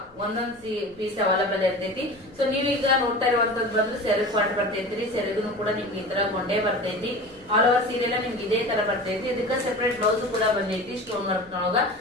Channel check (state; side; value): noise; left; rumble, 28 dB below the sound